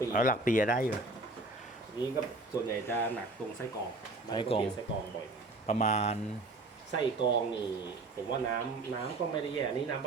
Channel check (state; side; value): quieter; left; 3.2 dB